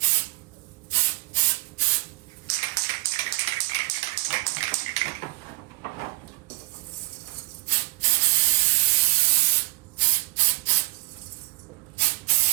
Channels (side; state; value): left; quieter; 23.0 dB